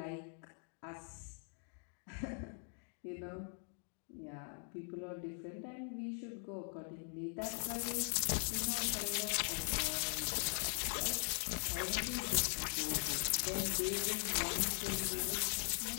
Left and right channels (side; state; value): right; silent; 50 dB below the other